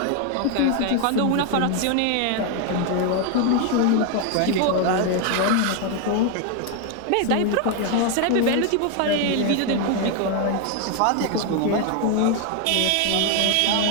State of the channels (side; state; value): both; different; correlation 0.01